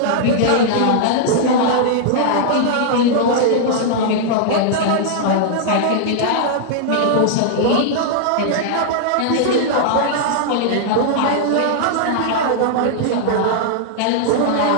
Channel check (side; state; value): both; different; correlation -0.01